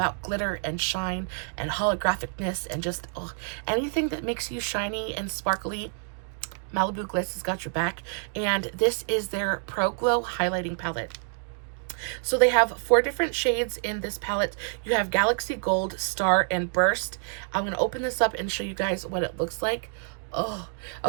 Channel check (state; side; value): silent; left; 60 dB below the other